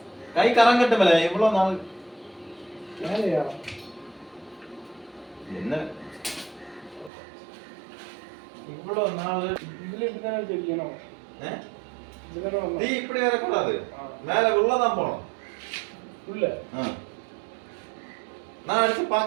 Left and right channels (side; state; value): left; drops out; at 7.1 s